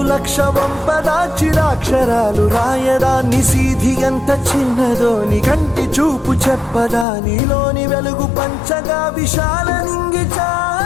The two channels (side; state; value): right; drops out; at 7.1 s